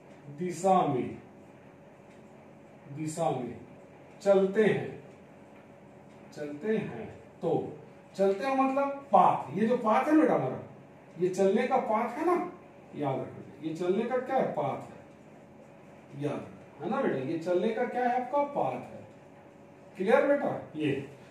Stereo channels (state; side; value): identical; both; correlation 1.00